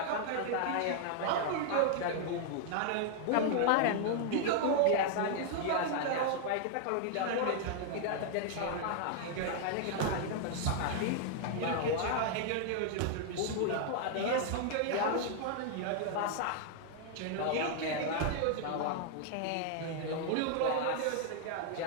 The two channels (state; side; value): different; both; correlation 0.00